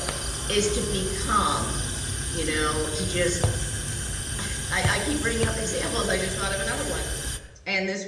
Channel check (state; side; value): identical; both; correlation 1.00